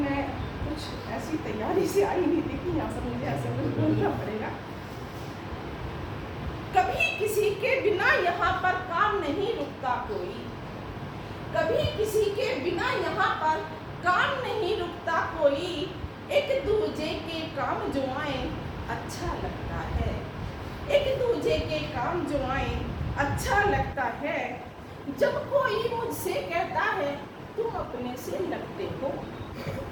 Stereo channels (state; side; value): identical; both; correlation 1.00